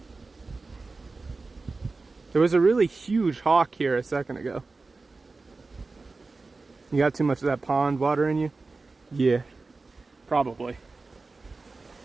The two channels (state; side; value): quieter; left; 3.8 dB